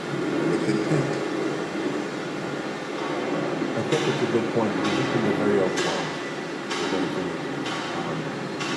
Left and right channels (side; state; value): both; identical; correlation 1.00